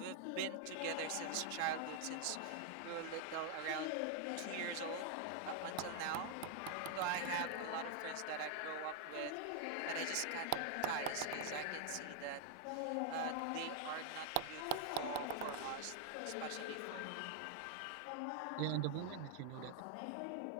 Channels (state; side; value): different; both; correlation 0.00